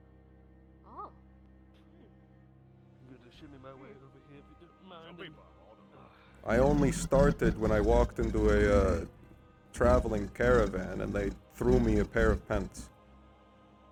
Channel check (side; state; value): both; identical; correlation 1.00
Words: Oh. I'm gonna shimmy my way over here if you don't mind. I only started when I walked into a traveling caravan and they threw me a pair of pants.